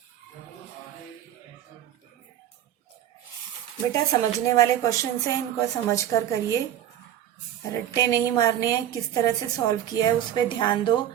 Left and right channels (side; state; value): left; quieter; 11.2 dB